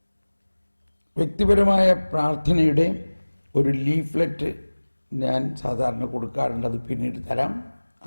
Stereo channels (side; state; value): both; inverted; correlation -1.00